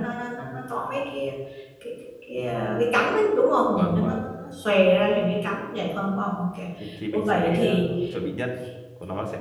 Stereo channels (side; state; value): both; identical; correlation 1.00